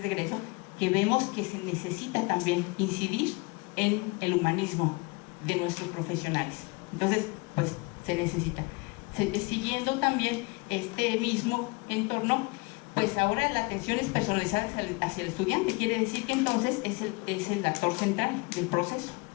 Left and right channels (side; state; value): right; quieter; 27.8 dB